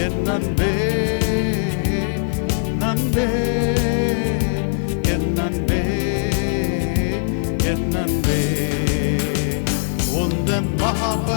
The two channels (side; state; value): right; silent; 57 dB below the other